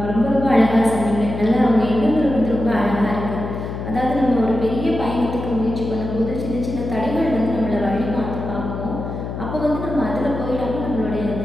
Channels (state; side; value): noise; left; hum, 6 dB below the sound